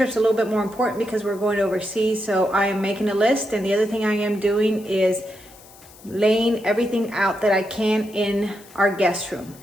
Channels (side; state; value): left; noise; hiss, 23 dB below the sound